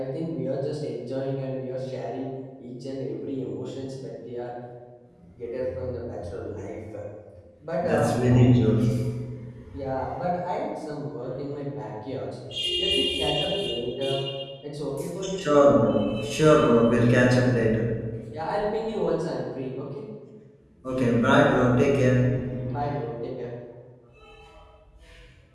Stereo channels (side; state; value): both; identical; correlation 1.00